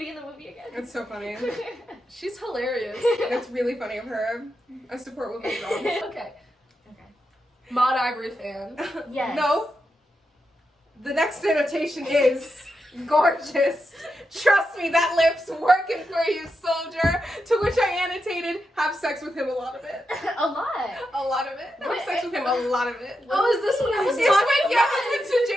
in the movie again? It's so funny. She's hilarious. It's really funny of her. I support women's wrongs. Okay. Maud Ivory fan. Yes. No. The next annotation is gorgeous. Trust me, that lip's working for you, soldier. To which I annotated, have sex with him a lot of it. A lot. A lot of it. Have sex with him a lot of it. Oh, is this what I was It's talking when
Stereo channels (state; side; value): normal; both; correlation 0.86